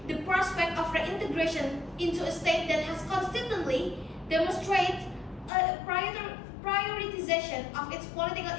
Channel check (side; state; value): right; drops out; at 5.5 s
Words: the prospect of reintegration into a state that has constantly demonstrated a prioritization of its political